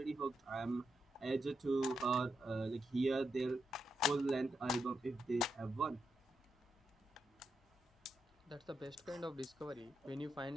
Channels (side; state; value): both; normal; correlation 0.84